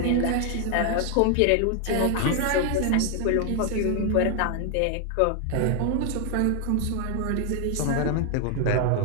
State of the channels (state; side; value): different; both; correlation 0.00